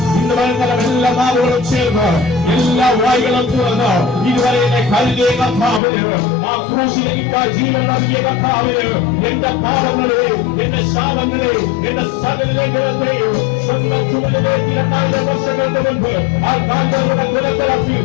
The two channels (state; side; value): drops out; right; at 5.8 s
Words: ഇന്ന് വൈകുന്നേരം എല്ലാ നാവുകളും ചേർന്ന് എല്ലാ വായികളും തുറന്ന് ഇതുവരെ എന്നെ കരുതിയ കർത്താവിന് ആ ക്രൂശിലേക്ക് ജീവൻ നൽകിയ കർത്താവിന് എന്റെ പാപങ്ങളെ എന്റെ ശാപങ്ങളെ എന്റെ സകല ലംഘനത്തെയും സ്വന്തം ചുമലിലേക്ക് 2000 വർഷങ്ങൾക്ക് മുൻപ് ആ കാൽകളുടെ കുലത്തിറക്കി